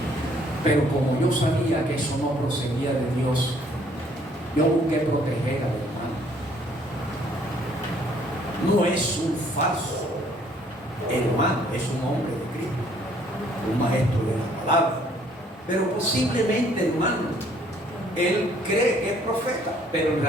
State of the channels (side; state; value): both; normal; correlation 0.62